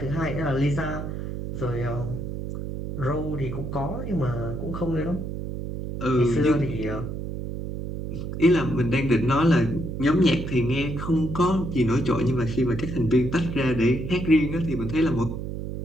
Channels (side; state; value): right; noise; hum, 6 dB below the sound